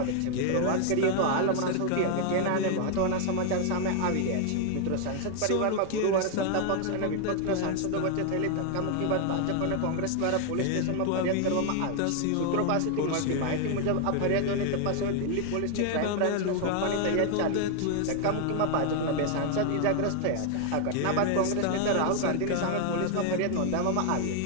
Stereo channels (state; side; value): different; both; correlation 0.00